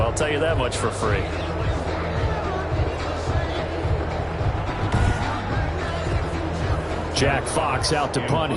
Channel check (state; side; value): identical; both; correlation 1.00